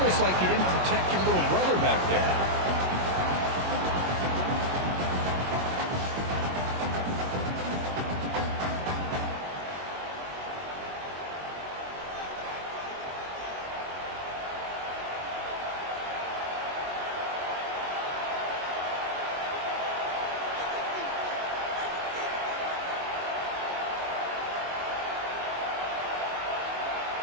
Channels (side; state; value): left; late; 22 ms